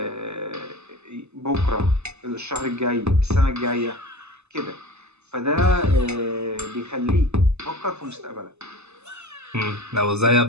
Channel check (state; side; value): late; left; 0.81 ms